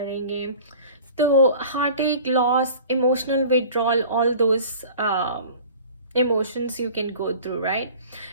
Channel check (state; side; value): inverted; both; correlation -0.44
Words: तो हार्ट एक, loss, emotional withdrawal, all those emotions you can go through, right?